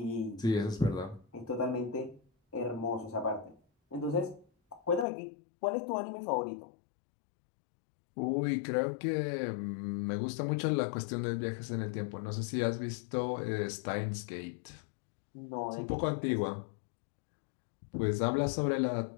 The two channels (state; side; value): drops out; right; at 5.1 s